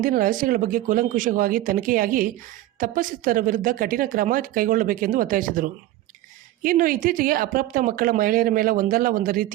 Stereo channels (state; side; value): quieter; left; 15.2 dB